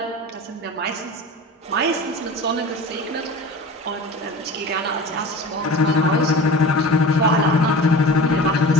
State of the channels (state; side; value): normal; both; correlation 0.36